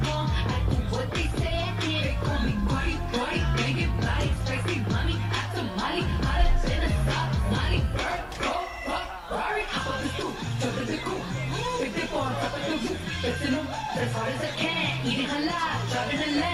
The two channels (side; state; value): both; identical; correlation 1.00